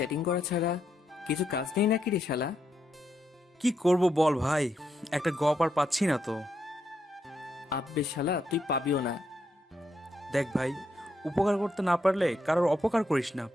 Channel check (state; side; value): normal; both; correlation 0.80